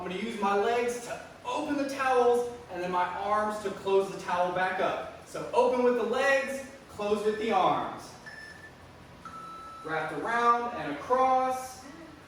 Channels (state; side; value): identical; both; correlation 1.00